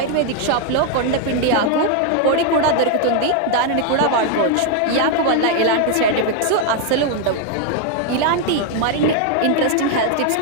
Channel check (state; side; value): different; both; correlation 0.00